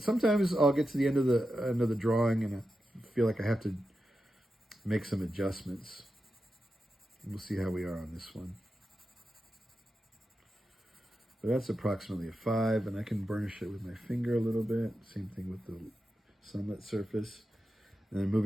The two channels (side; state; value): both; normal; correlation 0.90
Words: I'll get to the end of the drawing and I feel like I have to make some adjustments. We'll see how we are on this one. But that's approximately a 5, and I can burnish it with my finger a little bit. Same thing with the sunlit surface. And then